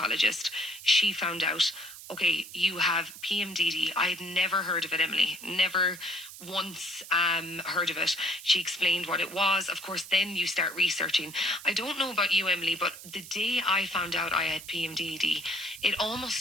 she found out, okay, you have PMDD. I had never heard of it, Emily. Never once heard of it. She explained what it was. Of course, then you start researching. I don't know about you, Emily, but the day I found out I had PMDD, it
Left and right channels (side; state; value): right; noise; hiss, 14 dB below the sound